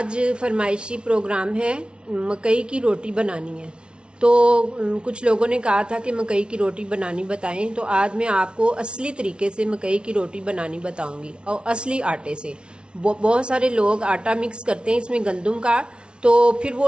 फरमाइशी प्रोग्राम है, मकई की रोटी बनानी है। तो कुछ लोगों ने कहा था कि मकई की रोटी बनानी बताएं, तो आज मैं आपको असली तरीके से मकई की रोटी बनानी बताऊंगी और असली आटे से। बहुत सारे लोग आटा मिक्स करते हैं इसमें गंदम का, तो फिर वो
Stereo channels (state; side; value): late; left; 0.057 ms